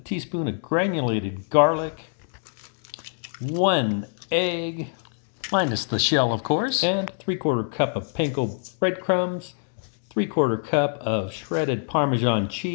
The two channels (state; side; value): silent; right; digital silence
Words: of granulated garlic, 1 egg, minus the shell of course, and 3/4 cup of panko breadcrumbs, 3/4 cup of shredded Parmesan